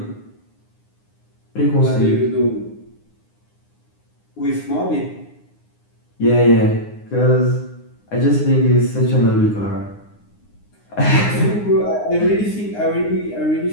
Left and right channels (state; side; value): late; right; 9.7 ms